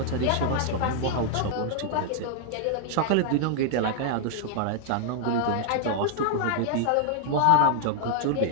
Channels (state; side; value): different; both; correlation 0.00